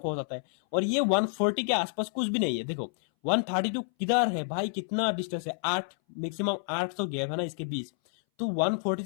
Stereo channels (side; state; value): right; silent; 59 dB below the other